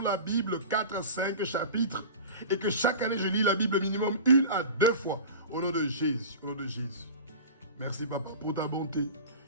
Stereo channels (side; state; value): both; inverted; correlation -0.34